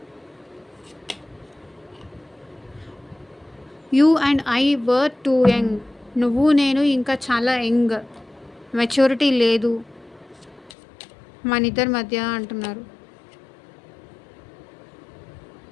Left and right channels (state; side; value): drops out; right; at 10.7 s